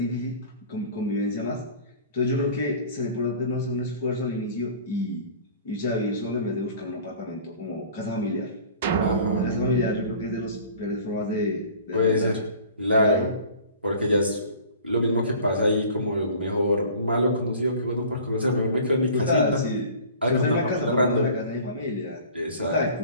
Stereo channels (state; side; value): inverted; both; correlation -0.45